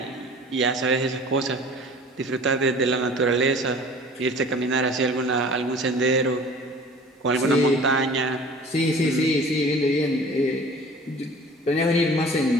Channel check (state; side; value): normal; both; correlation 0.45